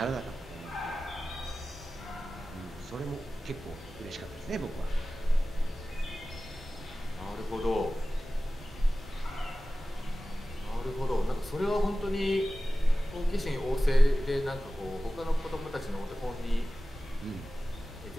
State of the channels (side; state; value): both; normal; correlation 0.96